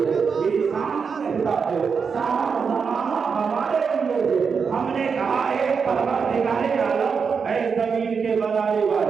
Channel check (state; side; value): quieter; left; 5.8 dB